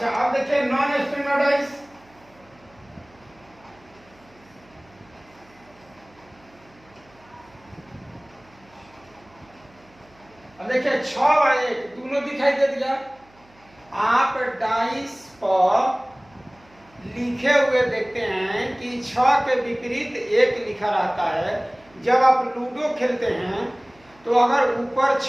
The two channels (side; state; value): right; noise; hum, 29 dB below the sound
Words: अब देखिए नॉन स्टैंडर्ड डाइस। अब देखिए 6 और 1 दोनों दिखाई दे दिया। आप डाइस पर लिखे हुए देखते हैं कि 6 के विपरीत 1 लिखा रहता है। जब आप लूडो खेलते हैं तो अगर ऊपर